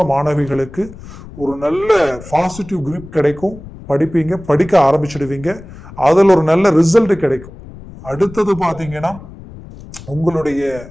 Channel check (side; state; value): left; noise; rumble, 17 dB below the sound